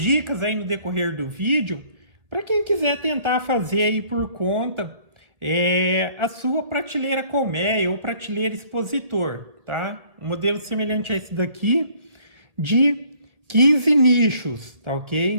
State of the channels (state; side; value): late; left; 1.8 ms